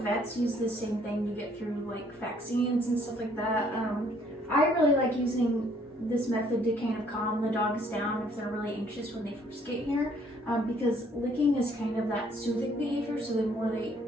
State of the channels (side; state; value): both; normal; correlation 0.63